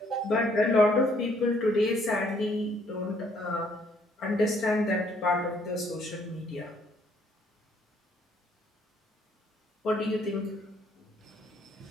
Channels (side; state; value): both; normal; correlation 0.66